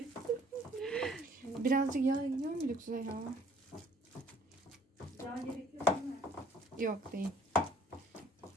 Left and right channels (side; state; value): both; normal; correlation 0.57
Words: Birazcık yağ gidiyor mu Züleyha? Yağ gerekiyor değil mi? Yok değil.